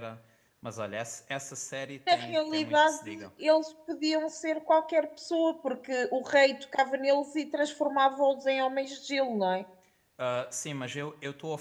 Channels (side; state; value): both; identical; correlation 1.00